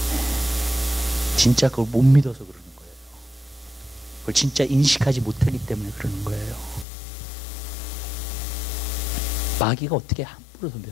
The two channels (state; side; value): drops out; right; at 6.9 s